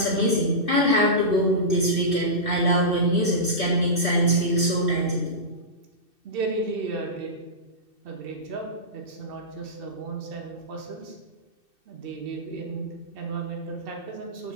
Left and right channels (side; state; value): left; late; 2.6 ms